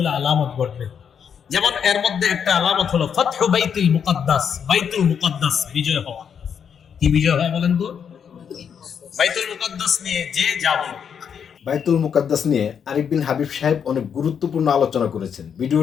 আলামত ঘটবে। যেমন এর মধ্যে একটা আলামত হলো ফাতহু বাইতুল মুকাদ্দাস, বাইতুল মুকাদ্দাস বিজয় হওয়া। কি বিজয় হওয়া বলেন তো? বাইতুল মুকাদ্দাস নিয়ে যে যাব। বাইতুল মুকাদ্দাস নিয়ে আরিফ বিন হাবিব সাহেব অনেক গুরুত্বপূর্ণ আলোচনা করেছেন।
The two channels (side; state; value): right; quieter; 7.5 dB